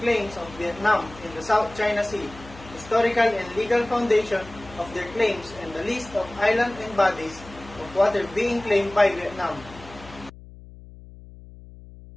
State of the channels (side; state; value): left; noise; hum, 18 dB below the sound